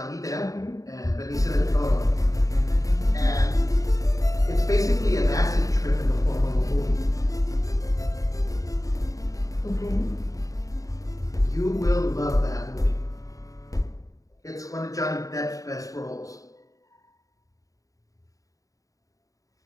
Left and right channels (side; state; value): right; late; 0.16 ms